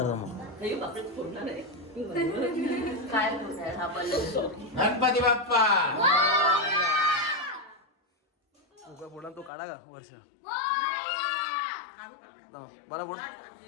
थांब. हे बापरे फोडणार आहे. गणपती बाप्पा उगा पुढा तो काढा का वर्ष. बरा पुढ.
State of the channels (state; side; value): drops out; right; at 9.5 s